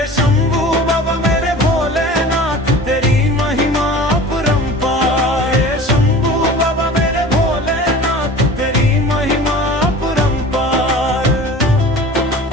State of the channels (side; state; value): both; normal; correlation 0.40